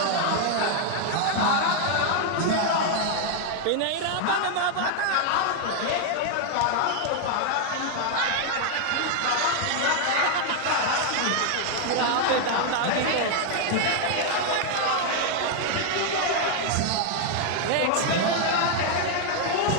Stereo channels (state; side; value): different; both; correlation 0.00